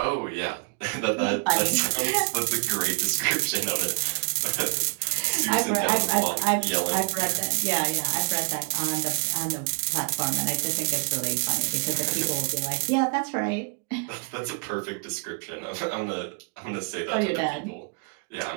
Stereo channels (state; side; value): quieter; left; 34.2 dB